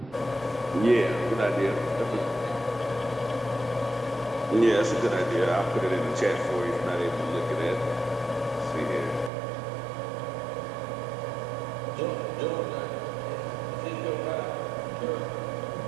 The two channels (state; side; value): drops out; left; at 9.3 s